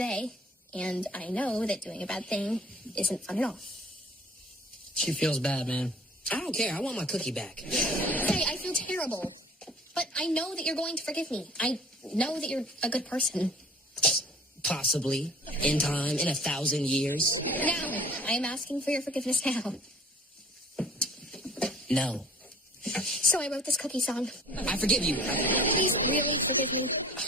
and I know that doing a bad thing isn't fun at all. She feels bad, man. I don't care. I want my cookie back. Hey, I feel terrible, but I know that you're going to forgive me. I know that you're a good person. Possibly. In time. In 1,000 years. Now, I am asking for your forgiveness now. No. So I wrote this cookie song. I forgive you. Please really forgive me.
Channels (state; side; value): normal; both; correlation 0.48